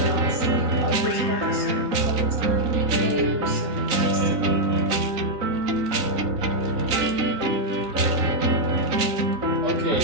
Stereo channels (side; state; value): left; late; 3.9 ms